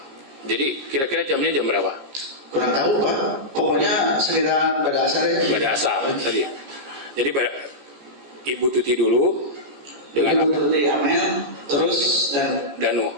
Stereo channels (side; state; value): left; late; 15 ms